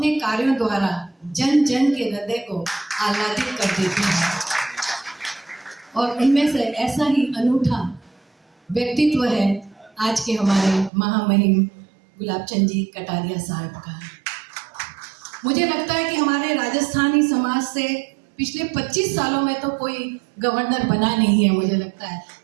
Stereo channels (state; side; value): drops out; left; at 10.9 s